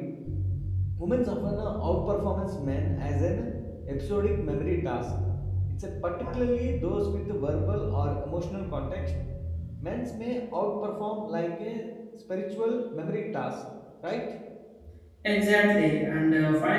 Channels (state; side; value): identical; both; correlation 1.00